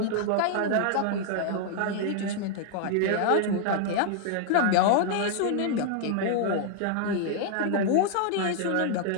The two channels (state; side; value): different; both; correlation 0.00